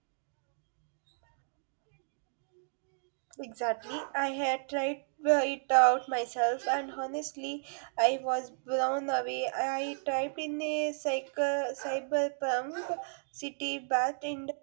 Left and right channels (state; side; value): silent; left; digital silence